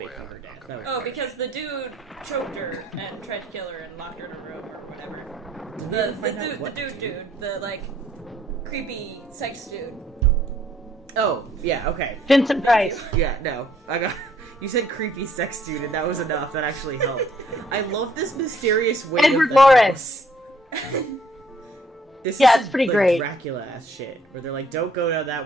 a way faking out. her death. I'll come That back. Oh, because the dude choked her and tried to kill her and locked her in a room or whatever. Did we The ever find out dude, what the like creepy sex dude. Oh, yeah, okay. Vincent Price. Yeah, no. I got. You said creepy sex dude, and that was enough. That actually helped. I love this mysterious way. Edward of the Lawrence. house. This Yeah, is it's pretty like great. Dracula ass shit, where they're like, "Don't go down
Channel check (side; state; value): both; normal; correlation 0.64